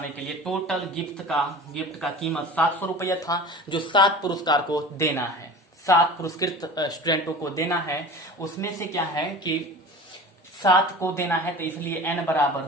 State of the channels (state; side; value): normal; both; correlation 0.37